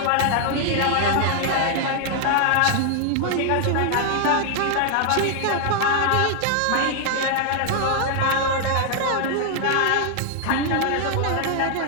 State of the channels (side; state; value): both; different; correlation 0.00